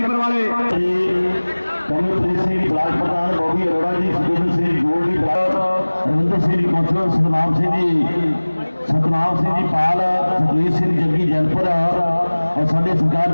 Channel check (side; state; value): both; inverted; correlation -1.00